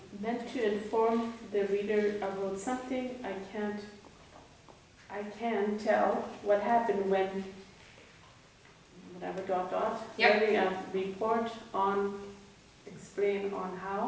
Meant to inform the reader about something I can tell what happened when, whatever, dot, dot. Yep. Writing a report on, explain on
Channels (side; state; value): both; identical; correlation 1.00